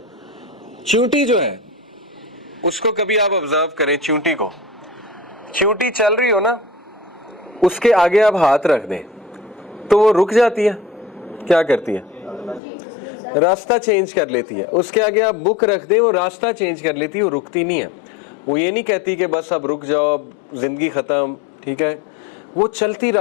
चींटी जो है उसको कभी आप ऑब्जर्व करें, चींटी को, चींटी चल रही हो ना, उसके आगे आप हाथ रख दें तो वो रुक जाती है। क्या करती है? रास्ता चेंज कर लेती है। उसके आगे आप बुक रख दें, वो रास्ता चेंज कर लेती है, वो रुकती नहीं है। वो ये नहीं कहती कि बस अब रुक जाओ, अब जिंदगी खत्म, ठीक है। वो चलती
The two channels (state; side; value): drops out; right; at 12.6 s